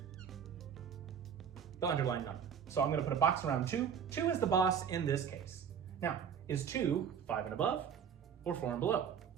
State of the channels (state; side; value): quieter; left; 7.6 dB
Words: the underlying number. So I'm going to put a box around 2. 2 is the boss in this case. Now, is 2 5 and above or 4 and below?